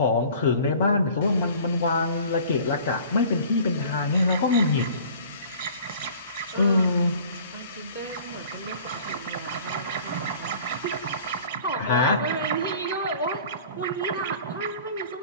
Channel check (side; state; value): both; inverted; correlation -0.47